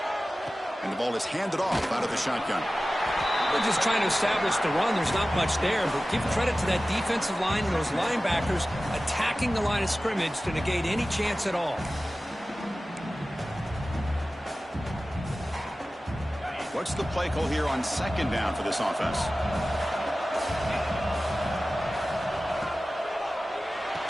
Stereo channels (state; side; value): normal; both; correlation 0.96